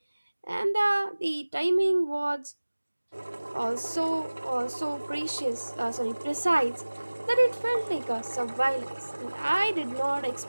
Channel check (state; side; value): inverted; both; correlation -1.00